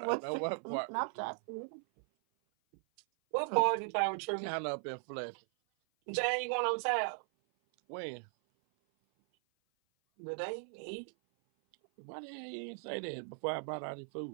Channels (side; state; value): left; silent; 53 dB below the other